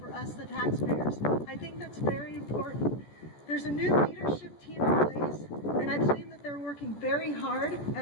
us, the taxpayers. I think that's very important. There's a new leadership team in place, and I believe that they're working very hard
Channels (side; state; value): right; late; 14 ms